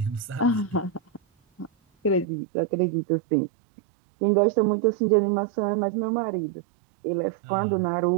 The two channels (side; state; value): left; drops out; at 2.2 s